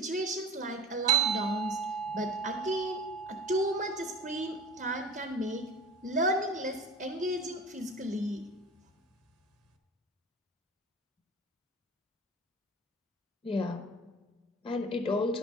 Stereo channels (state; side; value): normal; both; correlation 0.36